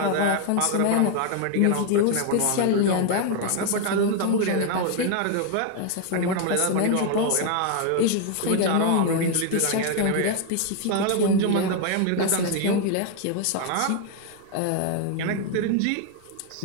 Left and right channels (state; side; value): different; both; correlation 0.00